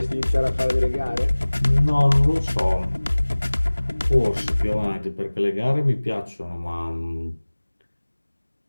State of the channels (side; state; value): both; inverted; correlation -1.00